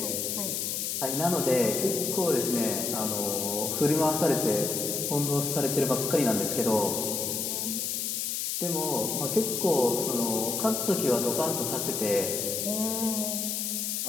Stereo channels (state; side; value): noise; left; hiss, 1 dB below the sound